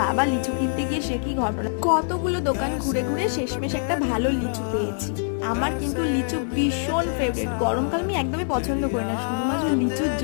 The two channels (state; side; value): silent; right; digital silence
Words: বাবা লিচু কিনতে গিয়ে সে কি ঘটনা, কতগুলো দোকান ঘুরে ঘুরে শেষমেশ একটা ভালো লিচু পেয়েছি। আমার কিন্তু লিচু ভীষণ ফেভারিট, গরমকাল আমি একদমই পছন্দ করি না, শুধুমাত্র লিচুর